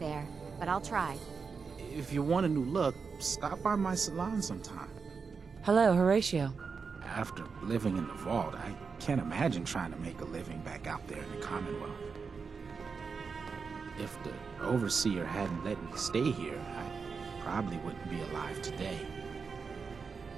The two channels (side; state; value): left; quieter; 5.3 dB